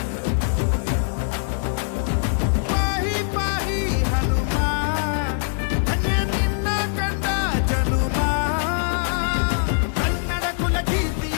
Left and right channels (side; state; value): right; silent; 60 dB below the other